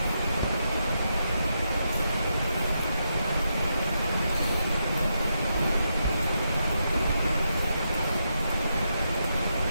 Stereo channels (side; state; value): both; inverted; correlation -0.83